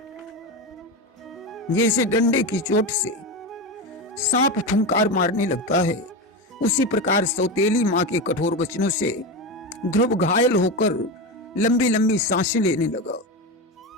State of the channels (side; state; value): both; normal; correlation 0.18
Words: जैसे डंडे की चोट से सांप फुंकार मारने लगता है, उसी प्रकार सौतेली मां के कठोर वचनों से ध्रुव घायल होकर लंबी लंबी सांसें लेने लगा।